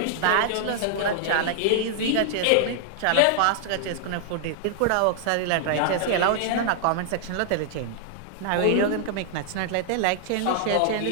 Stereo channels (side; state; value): both; different; correlation -0.01